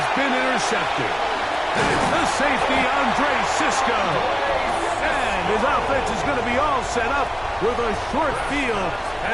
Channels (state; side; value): identical; both; correlation 1.00